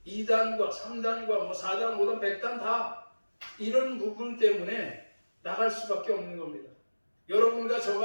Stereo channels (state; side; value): inverted; both; correlation -1.00